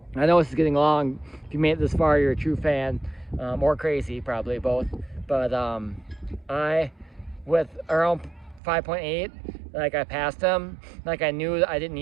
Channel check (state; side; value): drops out; left; at 8.6 s